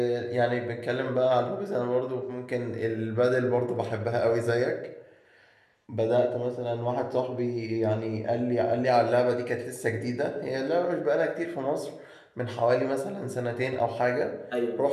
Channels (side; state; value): both; identical; correlation 1.00